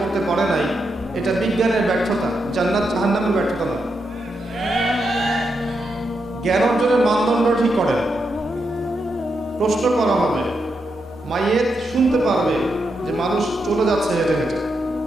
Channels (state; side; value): normal; both; correlation 0.84